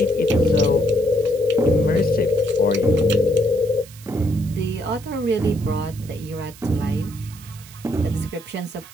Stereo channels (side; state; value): right; noise; hiss, 20 dB below the sound